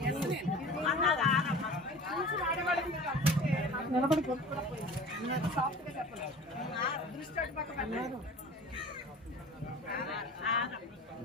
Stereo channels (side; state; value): both; normal; correlation 0.40